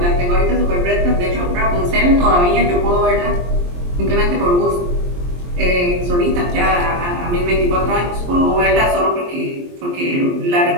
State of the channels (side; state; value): left; late; 23 ms